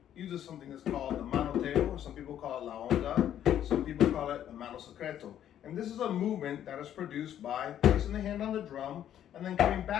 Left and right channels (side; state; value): right; quieter; 10.6 dB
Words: uses something that's called the manoteo, or some people call it la onda, some people call it the mano secreto. And this is a movement that is produced by placing the hand on the drum and then coming